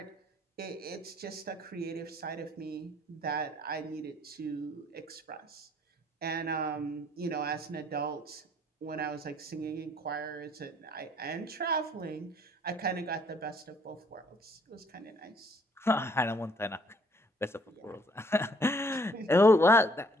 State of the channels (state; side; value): normal; both; correlation 0.63